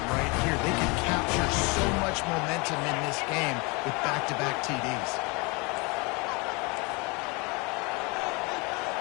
right here. They could capture so much momentum in this game with back-to-back TDs.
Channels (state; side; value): quieter; right; 28.6 dB